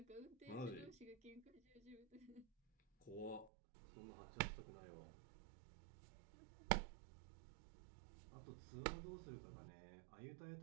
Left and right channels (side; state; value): left; drops out; at 3.5 s